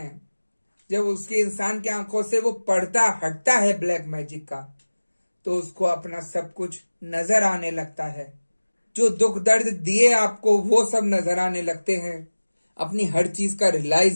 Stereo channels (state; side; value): inverted; both; correlation -1.00